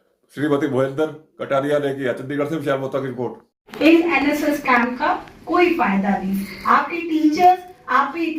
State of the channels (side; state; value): both; identical; correlation 1.00